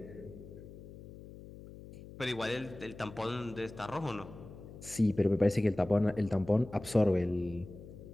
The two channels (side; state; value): left; noise; hum, 15 dB below the sound